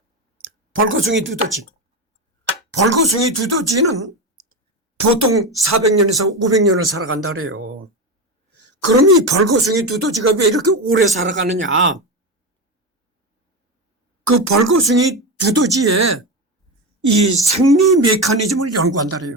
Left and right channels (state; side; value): normal; both; correlation 0.17